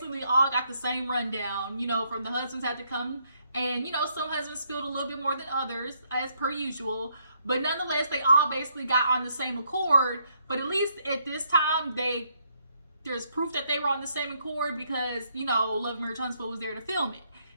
all got the same rundown. You know, from the husbands had to come, and you know, some husbands spilled a little bit more than others, as per usual. But nonetheless, they all basically got on the same accord. But at least at this time, there's proof that they were on the same accord because, you know, Love Marriage Huntsville was there to film it.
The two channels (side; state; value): both; inverted; correlation -0.73